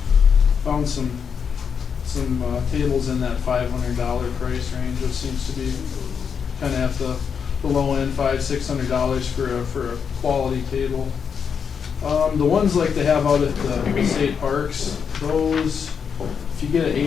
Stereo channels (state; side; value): quieter; right; 6.7 dB